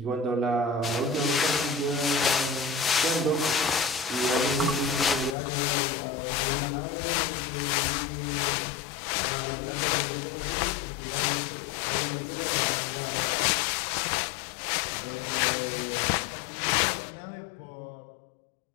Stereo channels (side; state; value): right; drops out; at 5.4 s